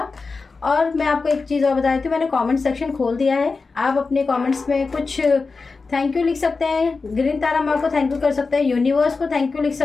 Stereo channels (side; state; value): right; quieter; 4.2 dB